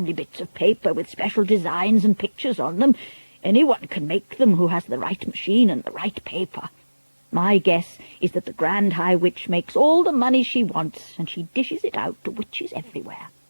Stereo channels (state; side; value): inverted; both; correlation -1.00